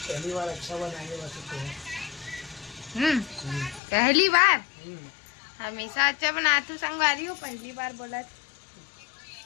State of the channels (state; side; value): drops out; right; at 3.8 s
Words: बार अच्छा बनाएंगे वैसे पोहा। पहली बार हमेशा अच्छा बनाती हूँ संगवारी हो, पहली बार बोला।